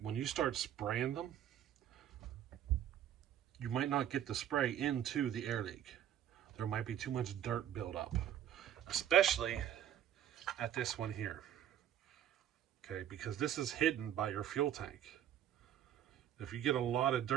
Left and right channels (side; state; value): left; quieter; 10.5 dB